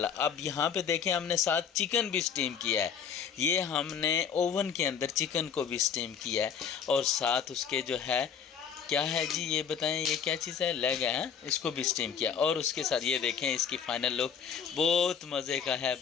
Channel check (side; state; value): right; quieter; 7.4 dB